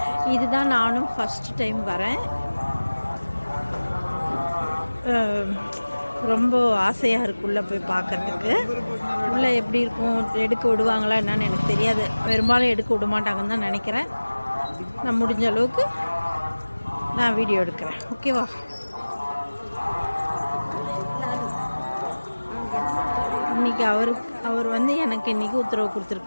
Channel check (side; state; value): both; inverted; correlation -1.00